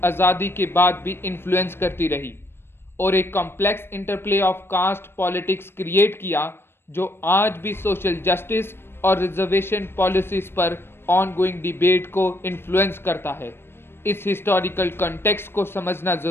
आज़ादी के बाद भी इन्फ्लुएंस करती रही, और एक complex interplay of caste politics create किया जो आज भी सोशल जस्टिस और रिजर्वेशन पॉलिसीज पर ऑनगोइंग डिबेट को इन्फ्लुएंस करता है। इस हिस्टोरिकल कॉन्टेक्स्ट को समझना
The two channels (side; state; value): right; late; 0.11 ms